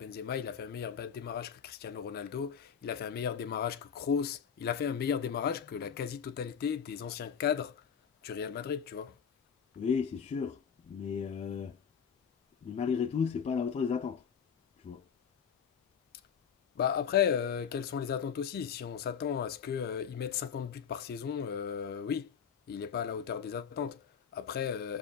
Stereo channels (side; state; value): right; quieter; 7.2 dB